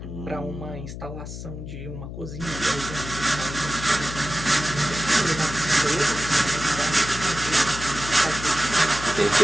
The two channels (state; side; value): noise; left; hum, 9 dB below the sound